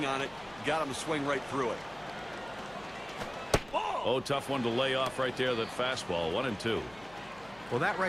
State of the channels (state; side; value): noise; left; hum, 23 dB below the sound